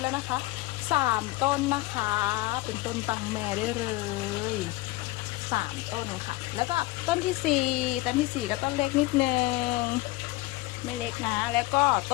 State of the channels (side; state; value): right; quieter; 19.9 dB